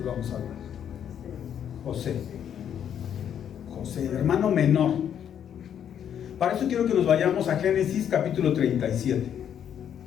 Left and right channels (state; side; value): quieter; right; 9.1 dB